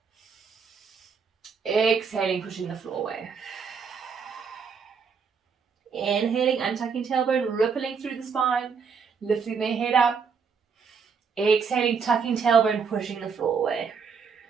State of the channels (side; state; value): left; quieter; 5.9 dB